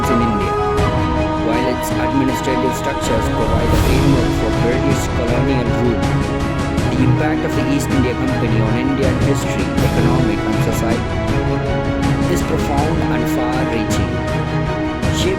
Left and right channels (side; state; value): both; identical; correlation 1.00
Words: in India, while its administrative structures provide a framework for British colonial rule. The impact of the East India Company on Indian history, economic, and society is profound and far-reaching,